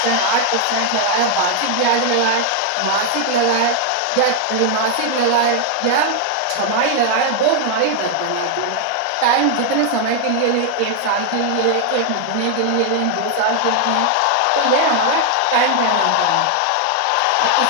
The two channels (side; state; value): both; different; correlation 0.00